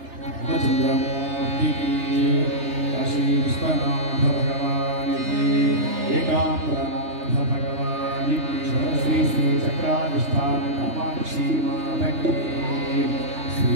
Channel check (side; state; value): left; late; 3.3 ms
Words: చంద్రమూర్తికి కాశీ విశ్వనాథ భగవానికి ఏకాంబరనాథ భగవానికి శ్రీ శ్రీ చక్రాధిష్టాన కామాక్షి మాతకి